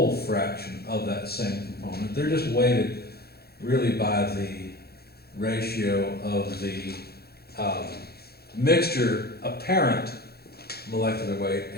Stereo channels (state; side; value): late; right; 0.46 ms